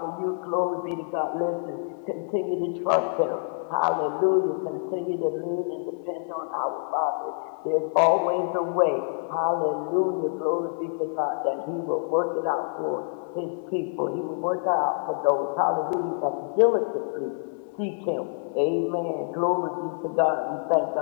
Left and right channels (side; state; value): right; silent; 60 dB below the other